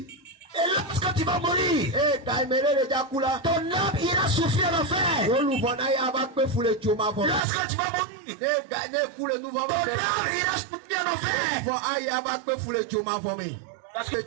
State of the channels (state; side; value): drops out; left; at 7.4 s